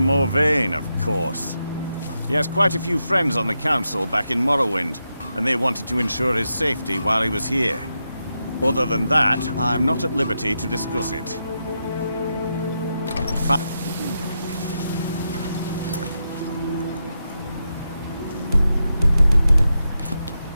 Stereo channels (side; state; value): both; inverted; correlation -0.86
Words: of course. He has quite a few friends on the council back in Morrowind, and they wanted to ensure his safety while he was here. Other than that, I'm not at liberty to discuss it.